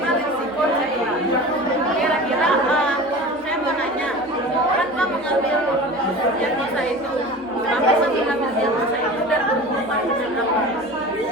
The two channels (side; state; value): both; normal; correlation 0.35